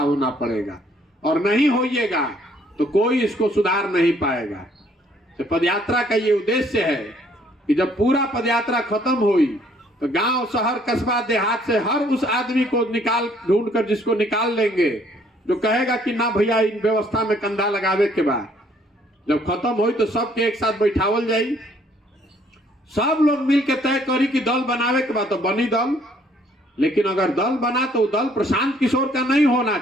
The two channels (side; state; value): both; normal; correlation 0.63